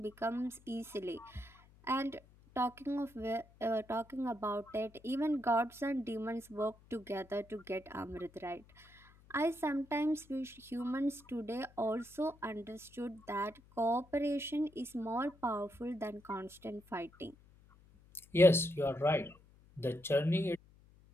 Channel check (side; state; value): left; noise; hum, 26 dB below the sound